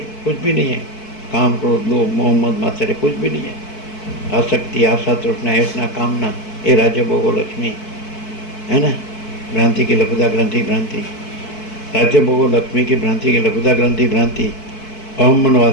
भी नहीं है, काम क्रोध लोभ मोह मद मात्सर्य कुछ भी नहीं है, आसक्ति आशा तृष्णा ऐसा कामना ये राज्य भोगो लक्ष्मी है ना, भ्रांति की लघुता ग्रंथि भ्रांति, राज्य भोगो लक्ष्मी की भ्रांति की लघुता ग्रंथि भ्रांति, अहम मन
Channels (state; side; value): late; right; 4.6 ms